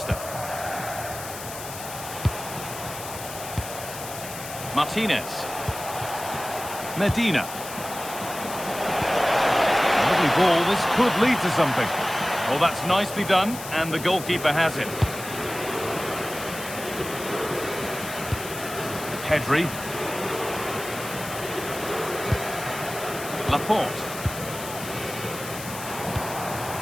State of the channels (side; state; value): left; noise; hiss, 11 dB below the sound